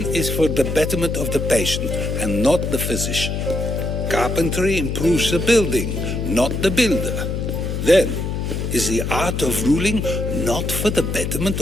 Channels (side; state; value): left; noise; hum, 2 dB below the sound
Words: is for the betterment of the patient and not the physician. Carpentry improves the building, not the builder. Then, is the art of ruling not for the betterment